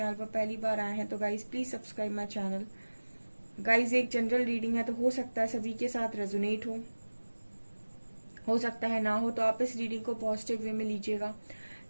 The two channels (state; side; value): inverted; both; correlation -1.00